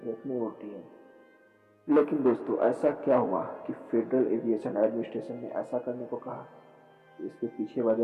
में उड़ती हैं। लेकिन दोस्तों, ऐसा क्या हुआ कि फेडरल एविएशन एडमिनिस्ट्रेशन ने ऐसा करने को कहा? इसके पीछे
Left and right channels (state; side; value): identical; both; correlation 1.00